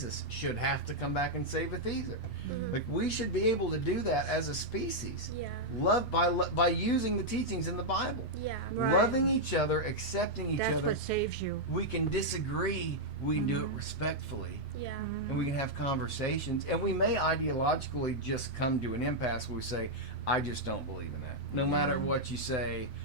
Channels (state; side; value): late; right; 5.4 ms